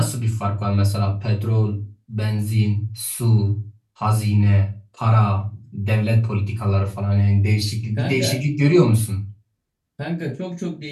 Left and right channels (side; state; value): both; identical; correlation 1.00